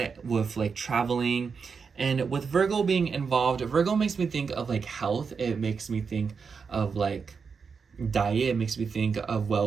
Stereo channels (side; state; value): left; quieter; 5.6 dB